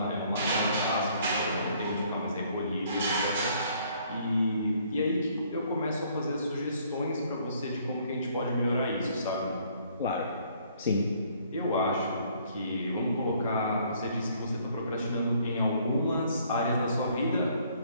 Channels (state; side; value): inverted; both; correlation -0.63